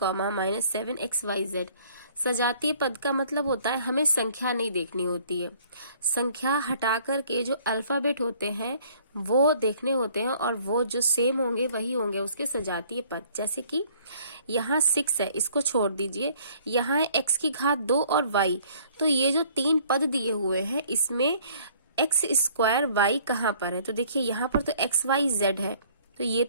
minus 7xyz। सजातीय पद का मतलब होता है हमें संख्या नहीं देखनी होती है, संख्या हटा करके जो अल्फाबेट होते हैं वो देखने होते हैं और वो जो सेम होंगे वही होंगे उसके सजातीय पद। जैसे कि यहाँ 6 है, इसको छोड़ दीजिए, यहाँ है x⁻² और y। तो ये जो तीन पद दिए हुए हैं इसमें x² y कहाँ पर है? तो देखिए यहाँ पर तो xyz है तो ये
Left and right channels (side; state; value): both; inverted; correlation -0.57